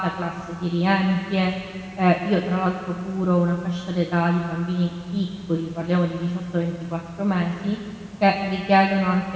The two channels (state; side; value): identical; both; correlation 1.00